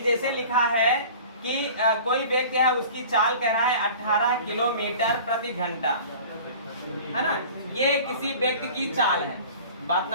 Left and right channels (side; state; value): both; inverted; correlation -0.42